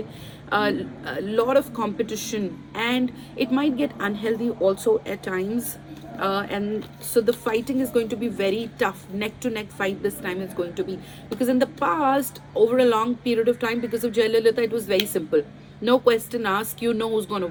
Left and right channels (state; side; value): identical; both; correlation 1.00